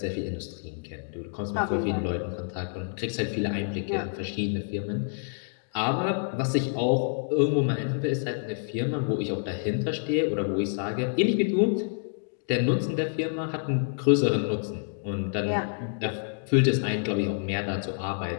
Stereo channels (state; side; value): silent; right; digital silence